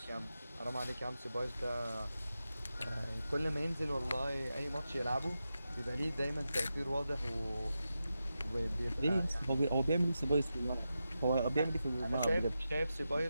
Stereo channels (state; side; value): inverted; both; correlation -0.90